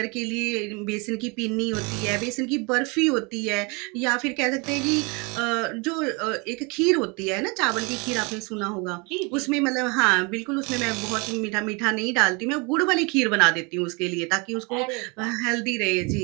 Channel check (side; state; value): left; quieter; 29.9 dB